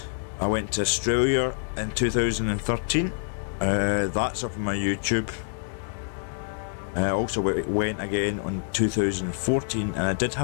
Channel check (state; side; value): silent; right; 61 dB below the other